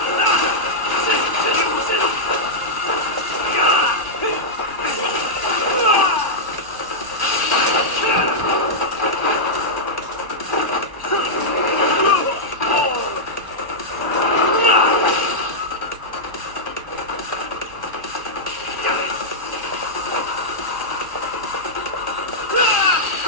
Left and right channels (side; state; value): left; late; 1.1 ms